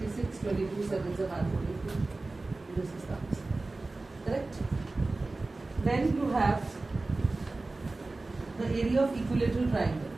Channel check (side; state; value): left; quieter; 3.3 dB